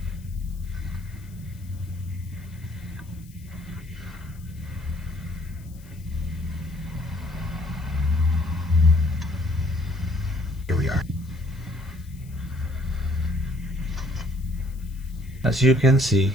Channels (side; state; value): left; noise; hiss, 25 dB below the sound